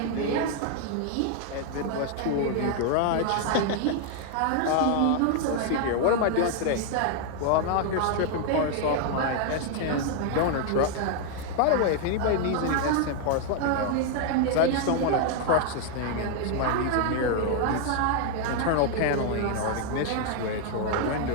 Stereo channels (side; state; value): both; different; correlation 0.00